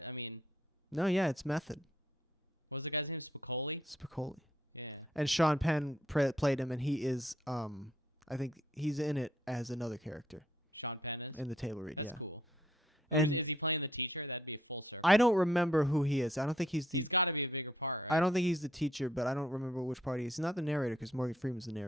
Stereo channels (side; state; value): both; normal; correlation 0.67